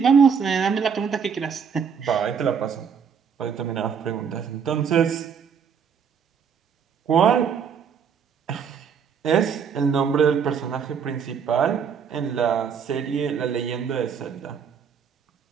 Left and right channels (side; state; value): left; quieter; 6.9 dB